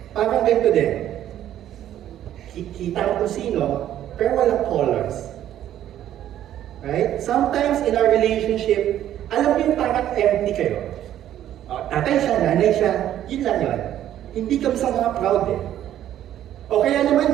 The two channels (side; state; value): left; quieter; 11.7 dB